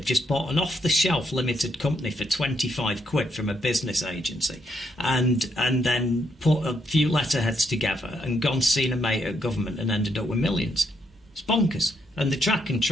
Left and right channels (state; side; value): normal; both; correlation 0.75